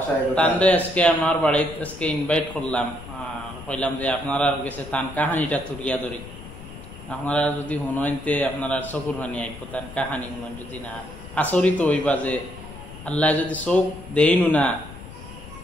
তানরে আজকে আমার বাড়িতে আজকে ইনভাইট করলাম, কইলাম যে আপনারা গেছে তান কাহানিটা তুলিয়া ধরি, আপনারা যদি শুনতে আপনারা চকুর পানি আইব। তার কাহানি শুনেন, যদি না আচরিত হইবা যে আল্লাহ যদি চোখ দেইনু না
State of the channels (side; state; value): left; noise; rumble, 14 dB below the sound